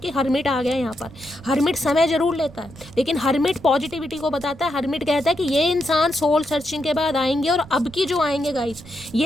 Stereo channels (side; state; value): right; noise; rumble, 19 dB below the sound